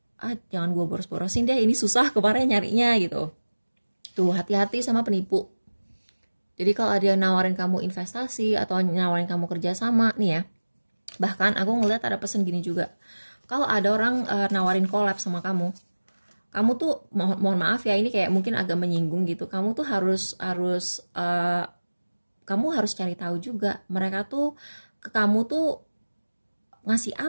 jangan gue boros-borosin deh, ini susah kemarin nyarinya gitu. Tuh hati-hati sama penipu. Jadi kalau ada yang nawarin kamu investasi atau nawarin kamu kerjasama nih ya, bahkan aku ngeliat ada pesan gini juga, kalau ada orang nawarin collab sama kamu tuh mohon maaf ya, ini kayak mungkin agak menyinggung gitu, kamu tuh harus kamu harus cari tahu juga mereka tuh ke kamu tuh ngasih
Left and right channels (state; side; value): inverted; both; correlation -1.00